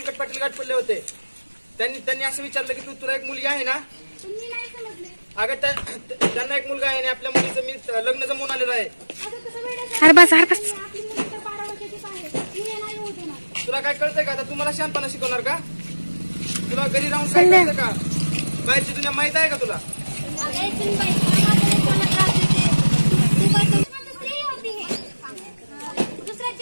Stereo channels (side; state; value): both; inverted; correlation -1.00